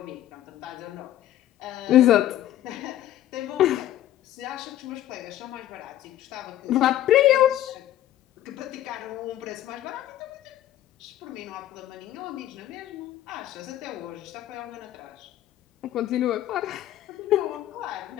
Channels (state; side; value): quieter; right; 12.9 dB